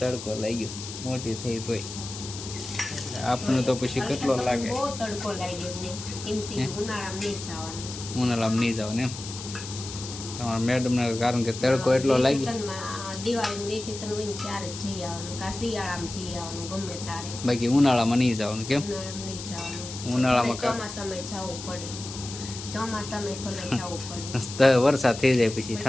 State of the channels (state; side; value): noise; left; hiss, 10 dB below the sound